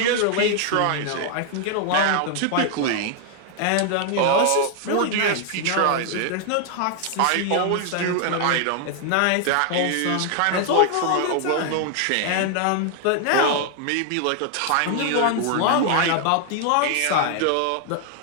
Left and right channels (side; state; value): both; different; correlation 0.00